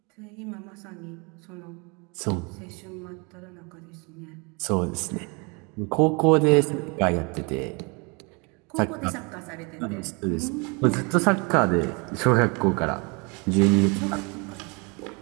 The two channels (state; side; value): quieter; left; 30.7 dB